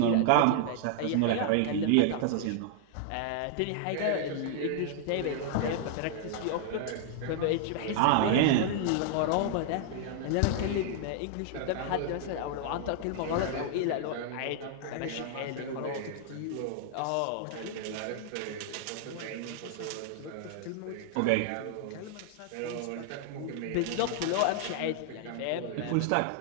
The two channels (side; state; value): both; different; correlation -0.01